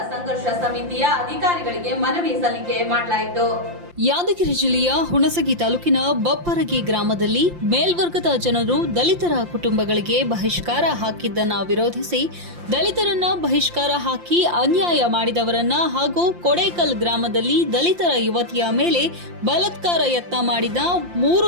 ಸಂಘರ್ಷ ಸಮಿತಿಯ ಅಧಿಕಾರಿಗಳಿಗೆ ಮನವಿ ಸಲ್ಲಿಕೆ ಮಾಡಲಾಯಿತು. ಯಾದಗಿರಿ ಜಿಲ್ಲೆಯ ಹುಣಸಗಿ ತಾಲೂಕಿನ ಬಪ್ಪರಗಿ ಗ್ರಾಮದಲ್ಲಿ ಮೇಲ್ವರ್ಗದ ಜನರು ದಲಿತರ ಕುಟುಂಬಗಳಿಗೆ ಬಹಿಷ್ಕಾರ ಹಾಕಿದ್ದನ್ನು ವಿರೋಧಿಸಿ ದಲಿತರನ್ನ ಬಹಿಷ್ಕಾರ ಹಾಕಿ ಅನ್ಯಾಯ ಮಾಡಿದವರನ್ನ ಹಾಗೂ ಕೊಡೇಕಲ್ ಗ್ರಾಮದಲ್ಲಿ ದಲಿತರ ಯುವತಿಯ ಮೇಲೆ ಬಲಾತ್ಕಾರ ಯತ್ನ ಮಾಡಿದ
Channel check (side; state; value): left; late; 5.7 ms